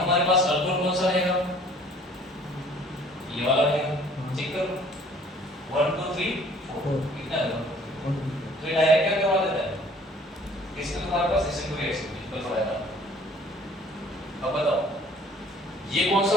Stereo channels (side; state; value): both; normal; correlation 0.55